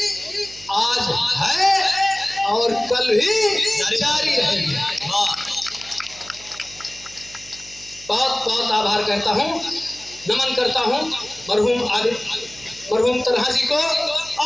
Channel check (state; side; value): noise; right; hum, 22 dB below the sound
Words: आज है और कल भी जारी रहेगी। बहुत बहुत आभार करता हूँ, नमन करता हूँ मरहूम तन्हा जी को,